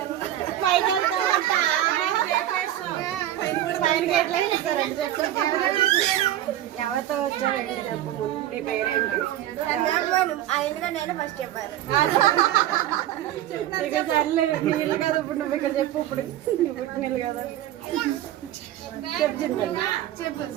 ఎవరితో వచ్చావు ఏంటి చెప్పు. ముందు నీ పేరేంటి? ఆయనగా నేను ఫస్ట్ చెప్పాను. ఇక సర్లే నీళ్ళు కదా ఇప్పుడు నువ్వు ఇక్కడ చెప్పు. ఇప్పుడు నువ్వు పుట్టినీళ్ళు కదా చెప్పు చింతల్లి. చెప్పు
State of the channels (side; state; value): left; quieter; 12.8 dB